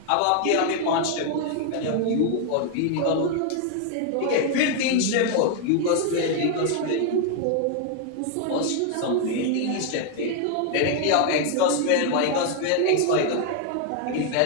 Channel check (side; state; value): both; different; correlation 0.00